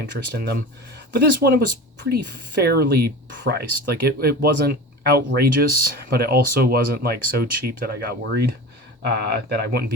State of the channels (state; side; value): normal; both; correlation 0.32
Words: in them. But this one, it was pretty fairly priced. Like, it wasn't outrageous, but it also wasn't like so cheap that I got worried that I wouldn't